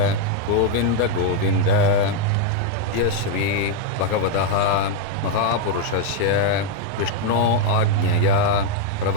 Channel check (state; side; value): different; both; correlation 0.01